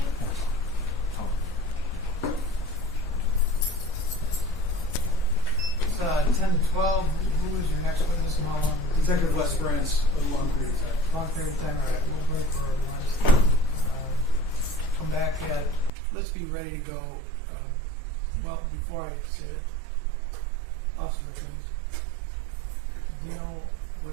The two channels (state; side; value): drops out; left; at 15.9 s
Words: It's 10 to 12. Who is your next witness and how long? Detective Les Brantz, a long period of time. Long period of time. All right, we'll break for lunch. Come back at, let's be ready to go. Well, before I say it, Officer McLean, do you know